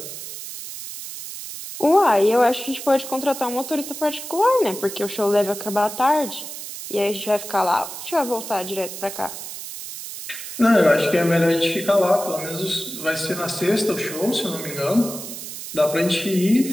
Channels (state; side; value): noise; right; hiss, 10 dB below the sound